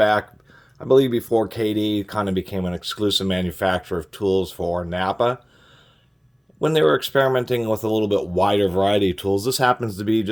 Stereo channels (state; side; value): identical; both; correlation 1.00